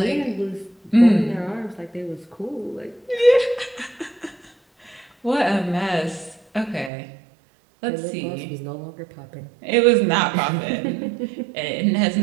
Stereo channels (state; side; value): drops out; left; at 6.9 s